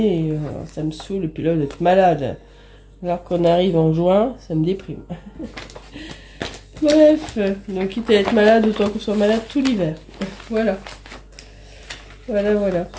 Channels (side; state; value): both; identical; correlation 1.00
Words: et, ça me saoule, et puis là d'être malade. Alors qu'on arrive en juin, ça me déprime. Bref, donc quitte à être malade, autant qu'on soit malade tout l'hiver. Voilà.